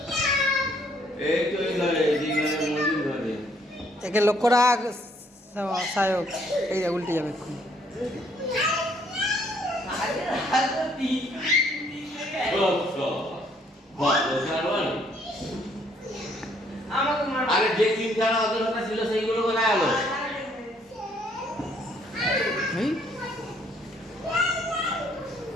এই তো এই ঘরে মন্দির ঘরে একে লক্ষ্য রাখ সায়ক। এই যে উল্টে যাবে এক্ষুনি। আমাকে মার আরে যে তিনখানা অদরকার ছিল সেইগুলো কোথায় গেল? এই,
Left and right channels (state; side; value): normal; both; correlation 0.66